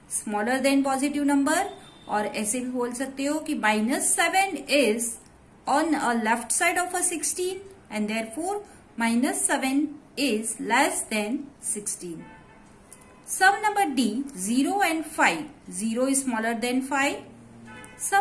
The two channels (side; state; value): both; identical; correlation 1.00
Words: smaller than positive number. और ऐसे भी बोल सकते हो कि -7 is on a left side of a 16 and therefore -7 is less than 16. Some number D, 0 and 5. 0 is smaller than 5.